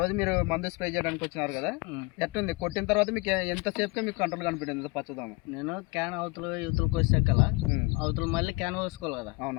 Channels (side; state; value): right; quieter; 25.4 dB